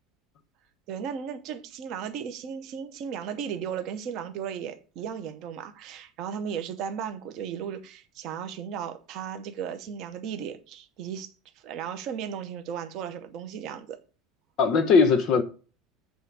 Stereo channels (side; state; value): both; normal; correlation 0.36